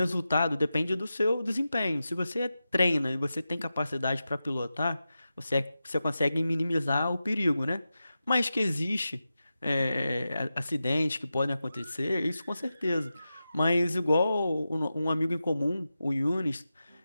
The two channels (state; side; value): inverted; both; correlation -0.92